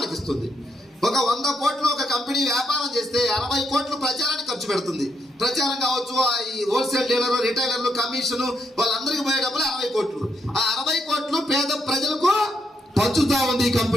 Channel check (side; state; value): both; normal; correlation 0.78